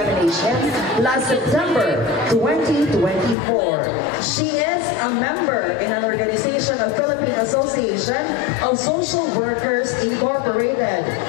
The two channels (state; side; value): drops out; right; at 3.4 s